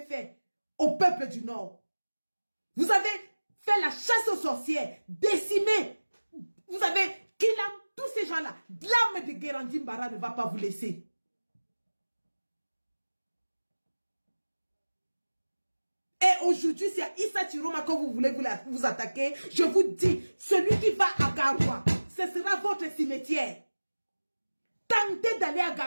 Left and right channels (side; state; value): both; inverted; correlation -1.00